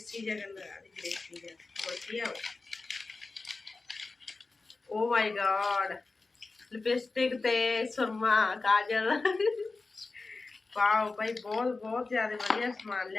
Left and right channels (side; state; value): right; quieter; 3.7 dB